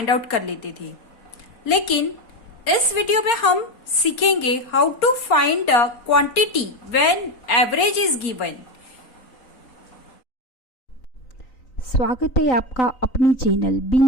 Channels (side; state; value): right; late; 4.3 ms